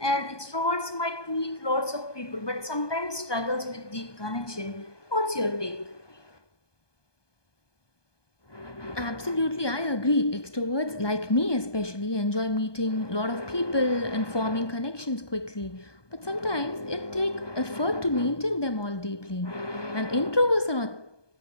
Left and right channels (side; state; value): right; late; 1.2 ms